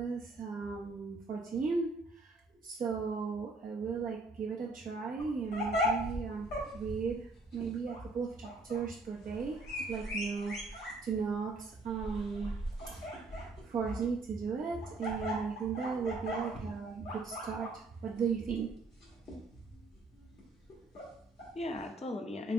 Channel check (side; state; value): left; quieter; 3.2 dB